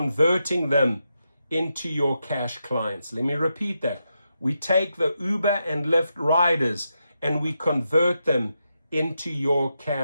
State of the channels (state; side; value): inverted; both; correlation -0.85